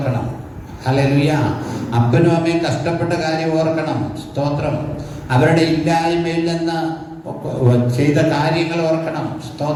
ഹല്ലേലൂയ. അപ്പനും അമ്മയും കഷ്ടപ്പെട്ട കാര്യം ഓർക്കണം. സ്തോത്രം. അവരുടെ ഇല്ലായ്മയിൽ നിന്ന് ചെയ്ത കാര്യങ്ങൾ ഓർക്കണം.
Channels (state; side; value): identical; both; correlation 1.00